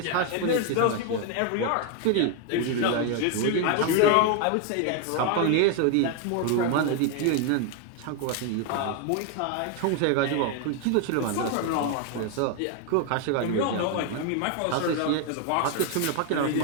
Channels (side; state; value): both; different; correlation 0.01